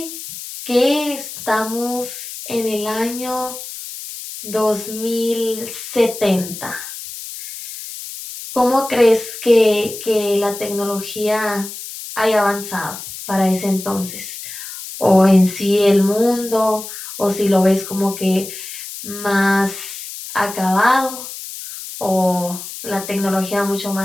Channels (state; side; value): noise; left; hiss, 10 dB below the sound